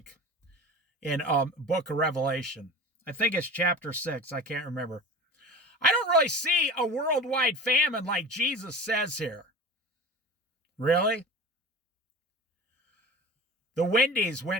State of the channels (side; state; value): both; normal; correlation 0.35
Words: in book of Revelation. I think it's chapter 6. I can't remember. I don't really see a worldwide famine like Jesus says here. Really? The Wendy's